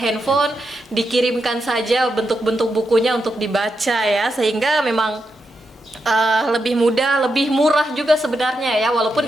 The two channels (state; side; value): normal; both; correlation 0.85